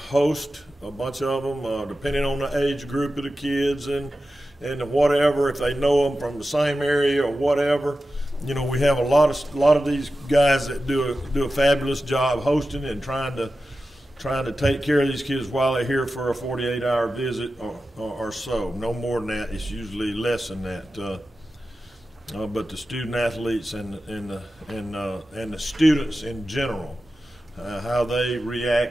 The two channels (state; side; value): normal; both; correlation 0.93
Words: host a bunch of them, depending on the age group of the kids and whatever, if they know them from the same area or whatever. You know, we have a lot of these guys that do a fabulous job hosting and trying to take care of these kids while they're here for a 48-hour visit or so. No more than that. It's usually less than that. But the student athletes and the students in general, how they